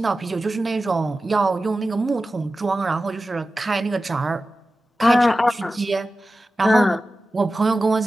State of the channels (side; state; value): both; normal; correlation 0.94